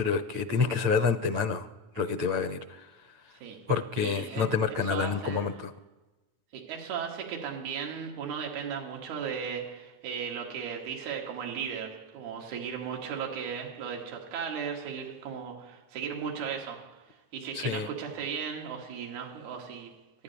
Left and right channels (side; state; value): left; late; 8.9 ms